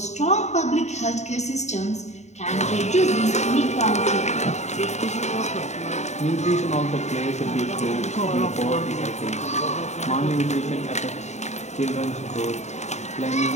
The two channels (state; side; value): late; right; 0.33 ms